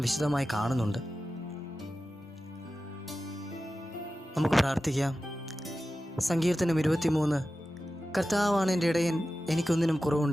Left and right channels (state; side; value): normal; both; correlation 0.94